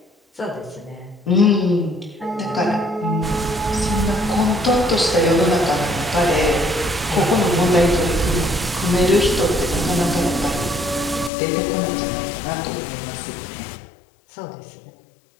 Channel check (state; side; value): drops out; right; at 11.3 s